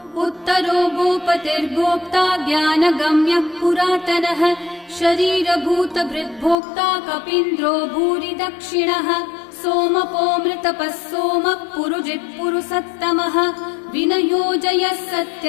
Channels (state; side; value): drops out; right; at 6.6 s